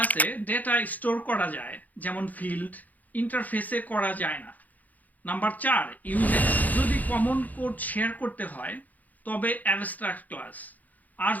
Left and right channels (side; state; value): right; late; 0.080 ms